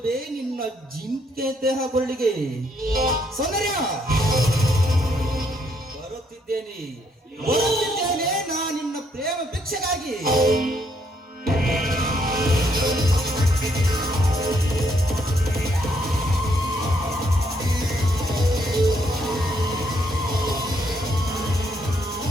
ನಿನ್ನ ಜಿಂಕೆ ದೇಹ ಕೊರಳಿಗೆ. ಸೌಂದರ್ಯ, ಬರುತ್ತಿದ್ದೇನೆ ನಾ ನಿನ್ನ ಪ್ರೇಮ ಭಿಕ್ಷೆಗಾಗಿ.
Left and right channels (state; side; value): normal; both; correlation 0.72